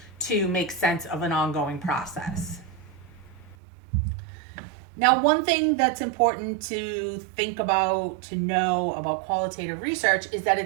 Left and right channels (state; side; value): drops out; left; at 3.6 s